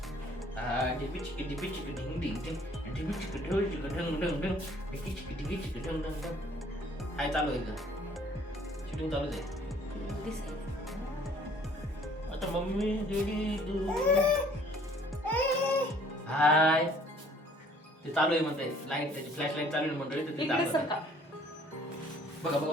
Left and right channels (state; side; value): normal; both; correlation 0.57